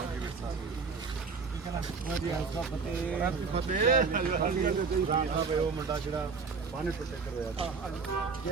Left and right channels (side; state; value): left; quieter; 5.0 dB